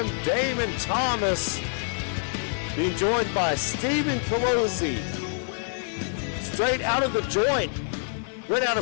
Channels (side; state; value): right; silent; 61 dB below the other